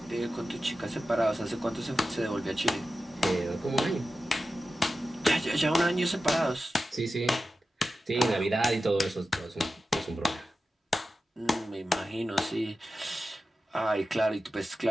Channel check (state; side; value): normal; both; correlation 0.93